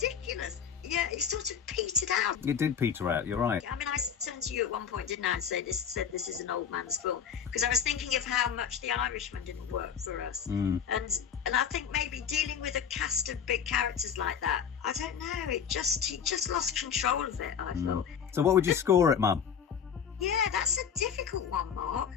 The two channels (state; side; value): quieter; right; 7.6 dB